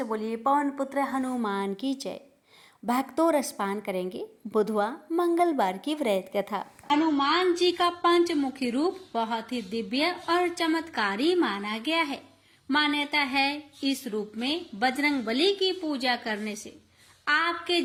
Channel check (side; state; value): both; identical; correlation 1.00